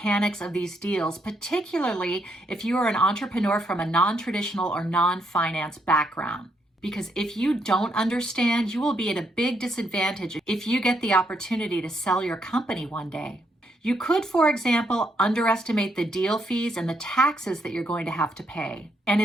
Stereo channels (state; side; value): normal; both; correlation 0.77